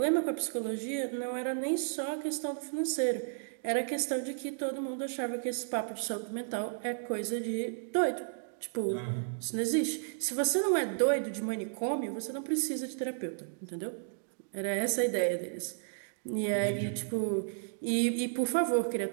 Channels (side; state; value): left; silent; digital silence